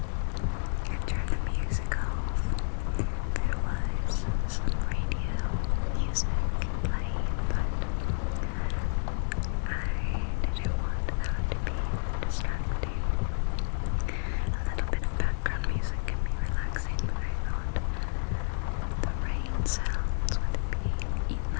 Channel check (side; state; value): right; silent; digital silence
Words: I turned the music off. There was some radio music playing, but I didn't want that to be distracting. A little bit of background music can be relaxing, but I thought the rain sounds would be